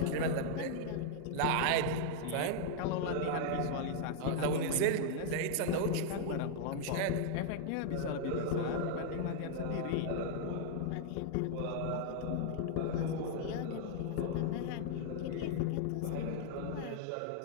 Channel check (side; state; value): both; different; correlation -0.01